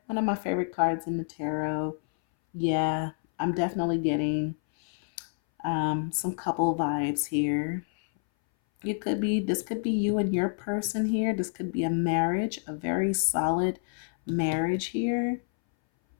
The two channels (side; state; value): right; silent; 59 dB below the other